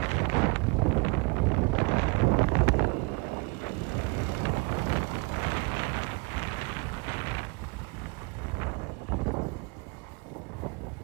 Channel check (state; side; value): quieter; left; 29.3 dB